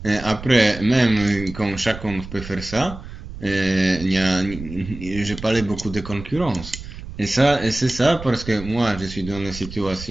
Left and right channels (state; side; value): noise; right; rumble, 12 dB below the sound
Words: après, même quand chacun peut faire ça, je parlais beaucoup de concurrence. Et c'est ça parce que moi, je suis dans une